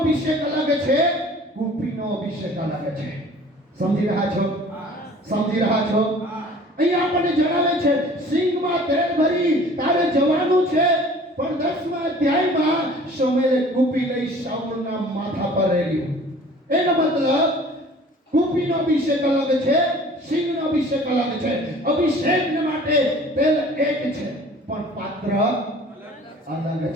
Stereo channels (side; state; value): both; normal; correlation 0.48